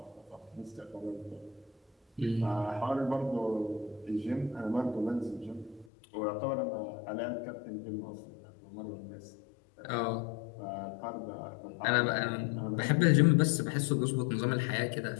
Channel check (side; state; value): right; drops out; at 5.9 s